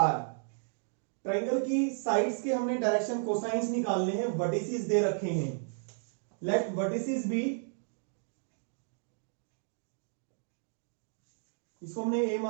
Triangle की sides के हमने direction cosines निकालने हैं, vertices दे रखे हैं। लेट वर्टिसेस बी, इसको हमने ए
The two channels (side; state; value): left; silent; digital silence